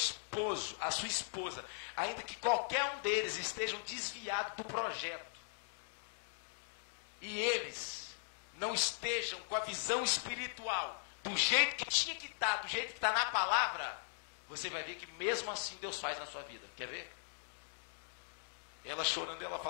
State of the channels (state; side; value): silent; right; digital silence